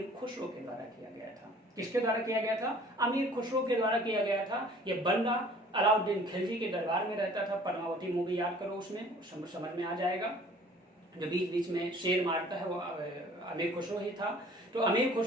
खुसरो के द्वारा किया गया था। किसके द्वारा किया गया था? अमीर खुसरो के द्वारा किया गया था। ये बंदा अलाउद्दीन खिलजी के दरबार में रहता था। पद्मावती मूवी याद करो, उसमें समझ में आ जाएगा। जो बीच बीच में शेर मारता है वो अमीर खुसरो ही था। तो अमीर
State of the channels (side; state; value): both; normal; correlation 0.52